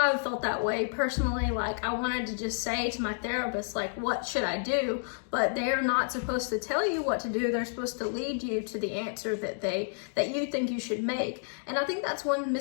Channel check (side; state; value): right; silent; digital silence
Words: felt that way personally. Like, I wanted to just say to my therapist, like, what should I do? But they're not supposed to tell you what to do. They're supposed to lead you to the answer that you think you should make. And I think that's one